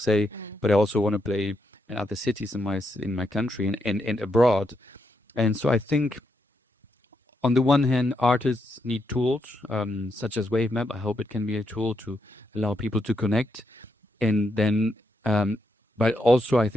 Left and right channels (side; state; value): both; normal; correlation 0.80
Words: but I also want to play in other cities in my country and abroad. And so I think, on the one hand, artists need tools, such as WAVMAP. I hope it can be a tool to allow people to connect. And then, but also I